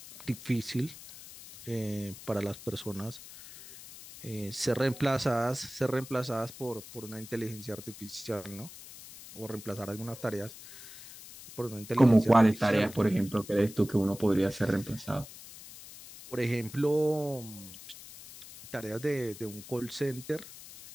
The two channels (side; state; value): left; noise; hiss, 16 dB below the sound